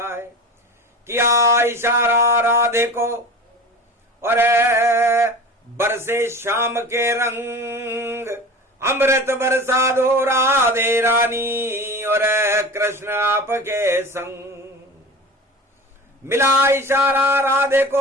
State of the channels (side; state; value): both; normal; correlation 0.34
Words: किया इशारा राधे को और बरसे शाम के रंग। अमृत बरसा दो राधे रानी और कृष्ण आपके संग। मिला इशारा राधे